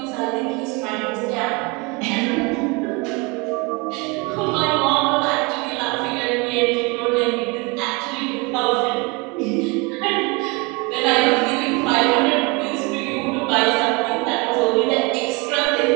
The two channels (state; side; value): quieter; left; 28.1 dB